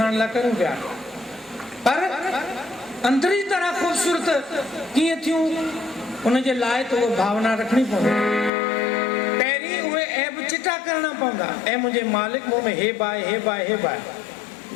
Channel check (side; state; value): right; drops out; at 8.5 s